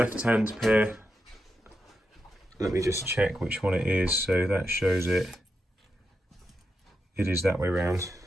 pair, let me just check which one it is. So that shows it. It is that way around.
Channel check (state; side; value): normal; both; correlation 0.86